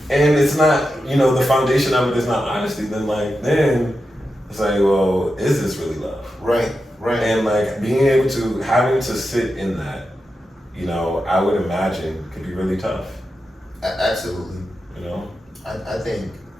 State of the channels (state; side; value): normal; both; correlation 0.89